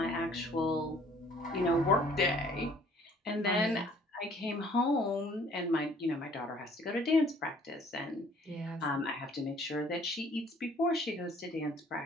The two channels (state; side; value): normal; both; correlation 0.57